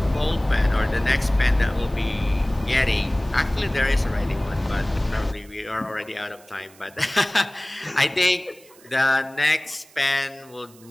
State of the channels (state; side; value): noise; right; hiss, 25 dB below the sound